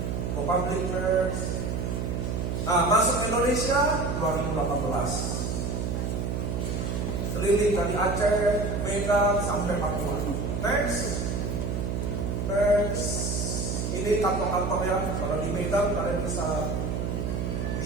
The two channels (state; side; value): noise; right; hum, 1 dB below the sound